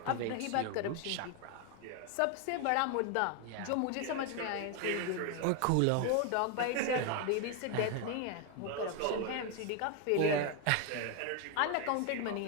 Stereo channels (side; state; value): both; different; correlation 0.01